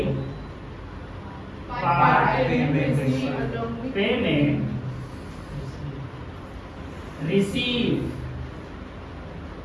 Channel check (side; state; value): both; identical; correlation 1.00